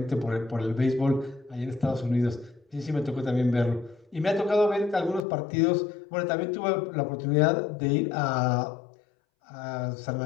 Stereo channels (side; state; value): right; drops out; at 5.2 s